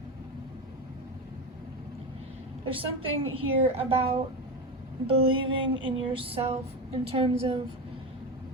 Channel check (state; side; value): normal; both; correlation 0.19